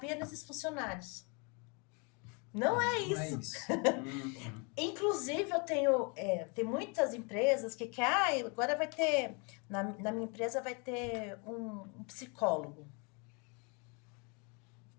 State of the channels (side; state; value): right; quieter; 33.2 dB